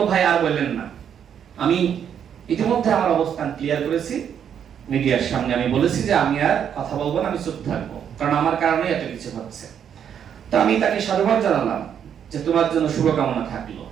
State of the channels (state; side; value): quieter; left; 8.5 dB